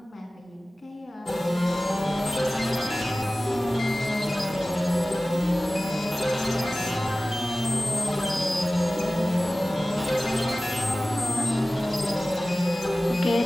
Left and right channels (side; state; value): both; normal; correlation 0.97